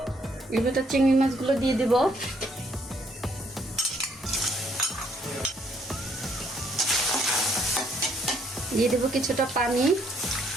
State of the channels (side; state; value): both; normal; correlation 0.68